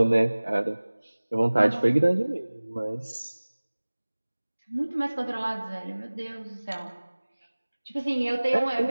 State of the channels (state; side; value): inverted; both; correlation -1.00